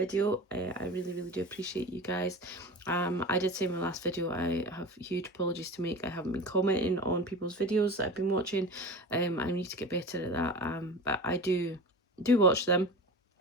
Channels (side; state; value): both; normal; correlation 0.32